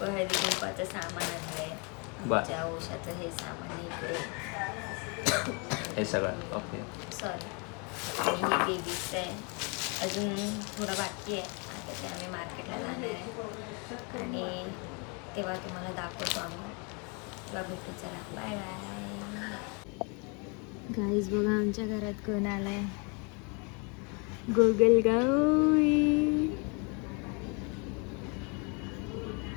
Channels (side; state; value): right; quieter; 33.2 dB